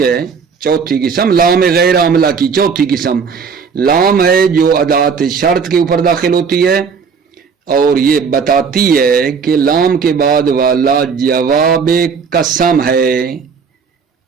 ہے. چوتھی قسم لام غیر عاملہ کی چوتھی قسم لام ہے جو ادات شرط کے اوپر داخل ہوتی ہے، اور یہ بتاتی ہے کہ لام کے بعد والا جواب قسم ہے.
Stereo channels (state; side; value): quieter; left; 5.8 dB